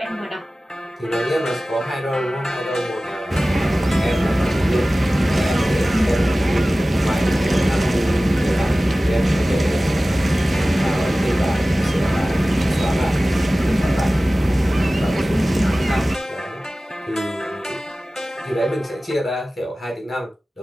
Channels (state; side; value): normal; both; correlation 0.96